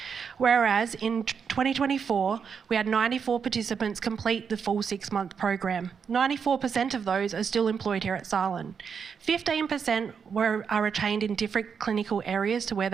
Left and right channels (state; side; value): quieter; left; 6.5 dB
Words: Whereas in 2024, we had 94 participants complete the full 6-month program. 94% of those are still employed here at SALHN. 15% are retained in different clinical areas to where